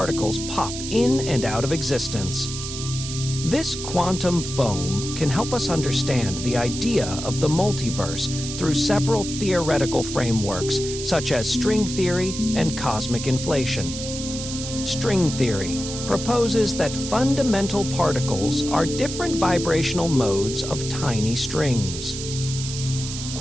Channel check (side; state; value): right; noise; hiss, 7 dB below the sound